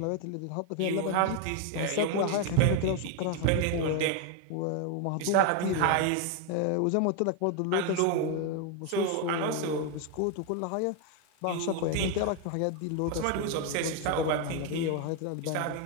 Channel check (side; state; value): both; different; correlation 0.01